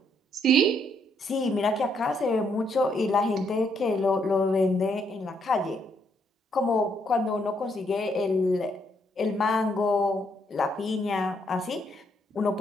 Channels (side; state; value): both; normal; correlation 0.73